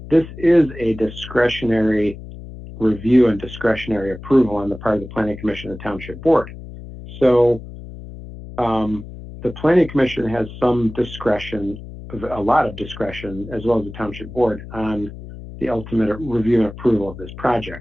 this is a discretionary review and discretionary approval on the part of the Planning Commission and Township Board. So the Planning Commission has some discretion, a lot of discretion, as well as the Township Board on the ultimate review and approval of this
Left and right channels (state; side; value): noise; left; hum, 13 dB below the sound